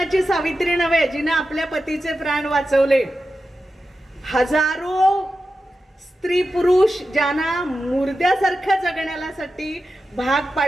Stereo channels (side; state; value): both; normal; correlation 0.91